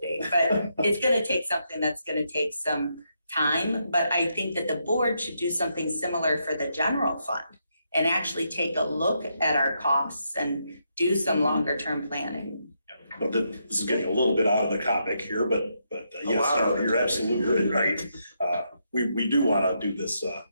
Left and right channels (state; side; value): inverted; both; correlation -0.80